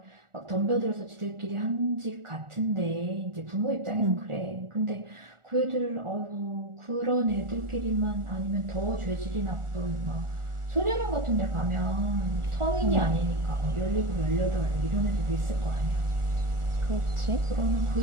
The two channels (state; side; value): late; left; 1.4 ms